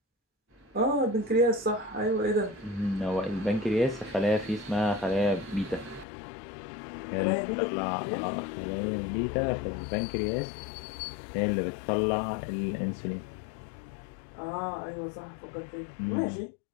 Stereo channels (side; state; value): right; drops out; at 6.1 s